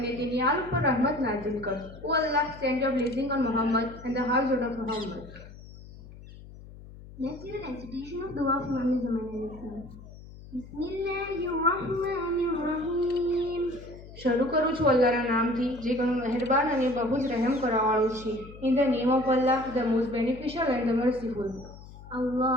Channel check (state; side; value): noise; left; hum, 17 dB below the sound